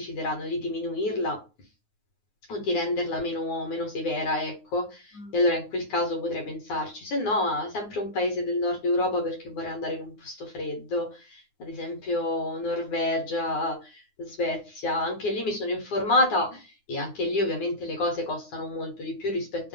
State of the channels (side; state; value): right; late; 9.6 ms